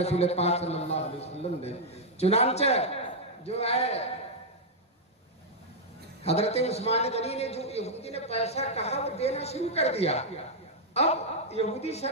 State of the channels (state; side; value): normal; both; correlation -0.04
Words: پاک صلی اللہ علیہ وسلم نے۔ چنانچہ جو ہے حضرت عثمان غنی نے جو یہودی نے پیسہ کہا وہ دینا شروع کر دیا۔ اب یہودی